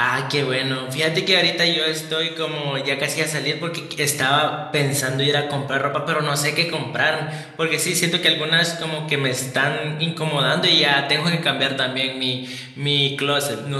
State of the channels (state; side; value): identical; both; correlation 1.00